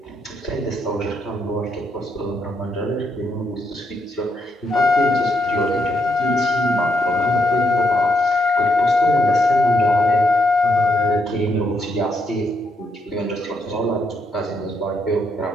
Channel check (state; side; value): normal; both; correlation 0.77